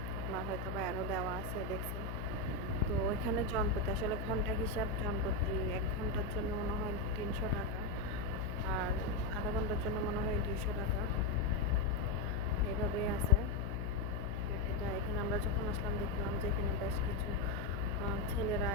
আপনার হয়তো বা অ্যারো দেওয়া আছে দেখছেন। তো ওইখানে জনপ্রতি আসলে ঘন্টা হিসাব, জনপ্রতি 1 ঘন্টার জন্য মনে হয় 300 টাকা, আর আধা ঘন্টার জন্য মনে হয় 200 টাকা, এইভাবেই আছে। এটা এখানে আমরা যখন আসলাম দেখলাম যে এখানে বেশ কিছু ছেলেরা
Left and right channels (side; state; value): left; noise; hum, 4 dB below the sound